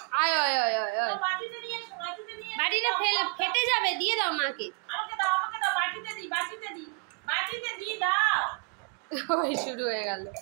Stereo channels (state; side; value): quieter; left; 35.3 dB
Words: আয় আয় আয় আয় আয়। বাটিতে নিয়ে এসো, বাটিতে নিয়ে এসো। বাটিটা ফেটে যাবে, দিয়ে দাও মাকে। আমাকে দাও, আমাকে দাও, বাটিতে দি, বাটিতে দি, বাটিতে দি দাও। ওই শুরু হয়ে গেল।